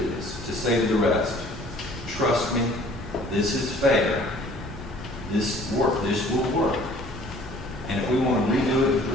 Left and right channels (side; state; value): both; normal; correlation 0.53